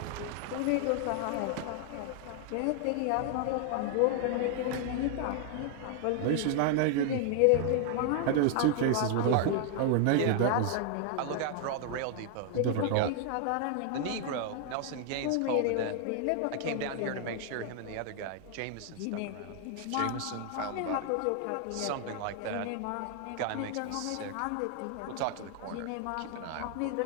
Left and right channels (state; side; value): different; both; correlation 0.00